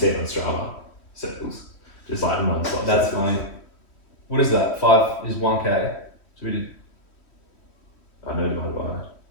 on Strava, circles, just like non-stop. That's circles. funny. What is that? 5 is 1K. So we did I know divided by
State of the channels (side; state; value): right; late; 3.1 ms